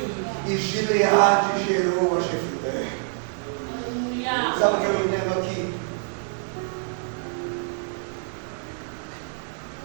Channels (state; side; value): silent; left; digital silence